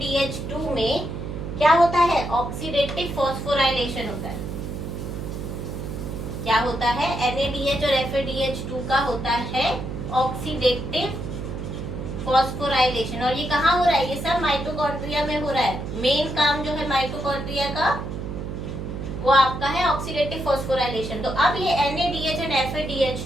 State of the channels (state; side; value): noise; right; hum, 6 dB below the sound